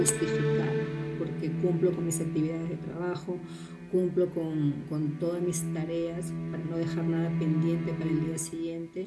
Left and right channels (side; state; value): both; identical; correlation 1.00